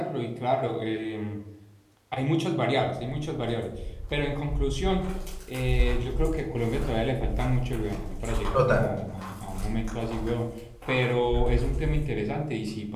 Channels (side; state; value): both; identical; correlation 1.00